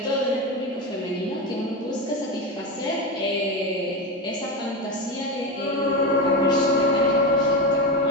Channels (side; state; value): both; normal; correlation 0.17